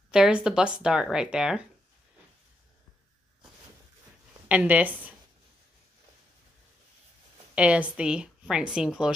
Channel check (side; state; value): both; normal; correlation 0.80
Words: There's the bust dart right there. And this is the French seam